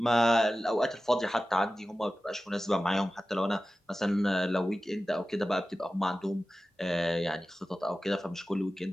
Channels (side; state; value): both; normal; correlation 0.95